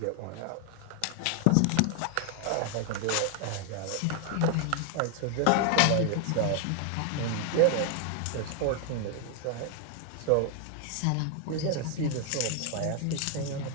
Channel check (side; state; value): both; different; correlation 0.00